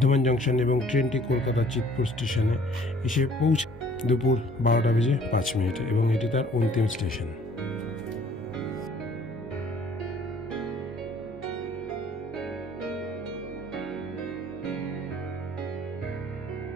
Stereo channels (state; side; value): normal; both; correlation 0.56